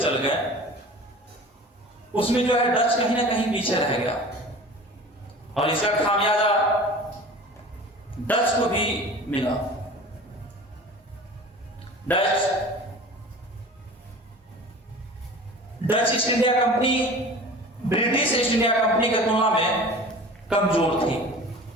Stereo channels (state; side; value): normal; both; correlation 0.40